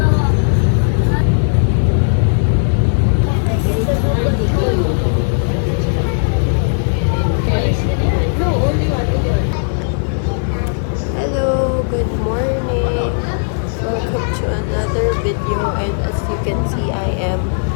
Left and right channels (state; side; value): silent; right; digital silence